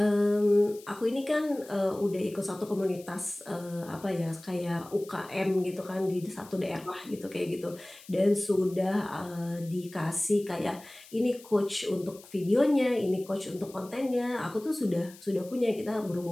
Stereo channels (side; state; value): left; noise; hiss, 21 dB below the sound